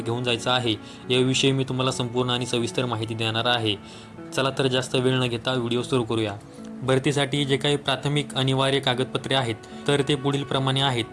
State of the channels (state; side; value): identical; both; correlation 1.00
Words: घेऊन जायचं आहे याविषयी मी तुम्हाला संपूर्ण आणि सविस्तर माहिती देणार आहे. चला तर जास्त वेळ न घेता व्हिडिओ सुरू करूया. भरतीसाठी जे काही प्राथमिक अनिवार्य कागदपत्रे आहेत तर ते पुढील प्रमाणे आहेत.